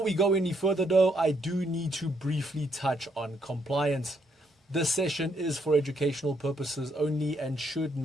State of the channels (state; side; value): normal; both; correlation 0.73